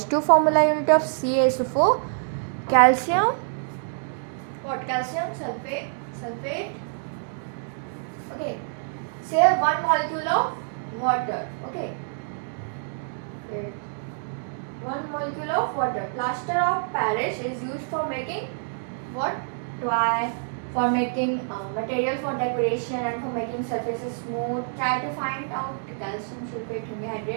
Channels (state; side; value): silent; left; digital silence